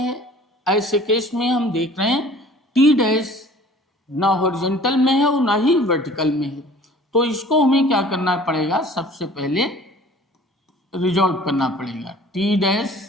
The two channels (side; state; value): both; normal; correlation 0.49